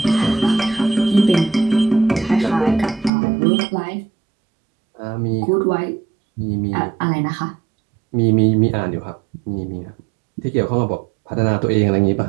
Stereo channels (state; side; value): drops out; left; at 3.1 s